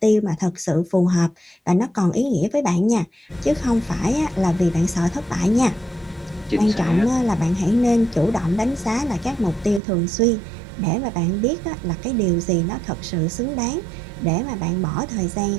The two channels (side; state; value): left; drops out; at 9.8 s